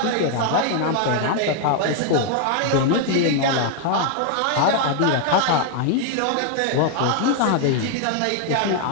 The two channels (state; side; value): different; both; correlation 0.00